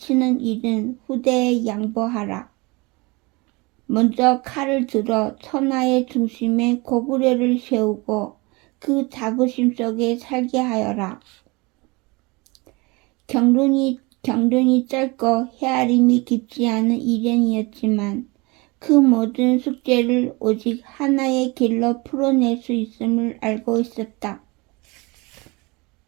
일은 후대에 양보하라. 먼저 칼을 들어 천하의 중심에 고구려를 세우고 그 자부심 속에 살게 하여라. 경륜이 짧고 헤아림이 깊지 않은 이련이었지만 그 모든 숙제를 오직 하나의 길로 풀어낼 수 있음을 알고 있었다.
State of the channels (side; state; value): left; quieter; 25.9 dB